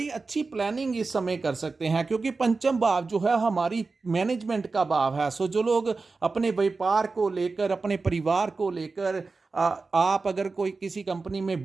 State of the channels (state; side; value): quieter; left; 4.0 dB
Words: अच्छी प्लानिंग इस समय कर सकते हैं, क्योंकि पंचम भाव जो है हमारी मैनेजमेंट का भाव है। सो जो लोग अपने व्यापार को लेकर, अपने परिवार को लेकर, आप अगर कोई किसी कंपनी में